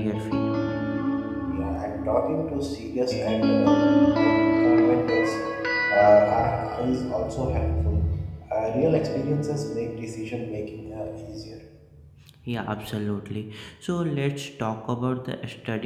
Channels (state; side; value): identical; both; correlation 1.00